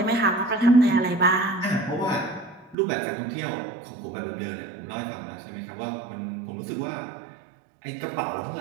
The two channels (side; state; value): left; drops out; at 2.8 s